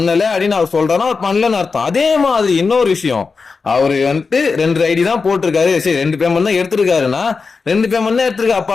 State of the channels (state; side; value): quieter; right; 4.7 dB